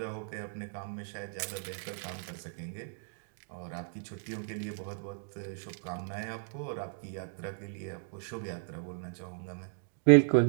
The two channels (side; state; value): left; silent; digital silence